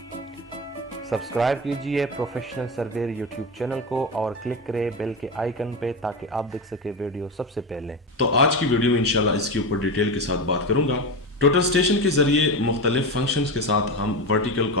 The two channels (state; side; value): normal; both; correlation 0.20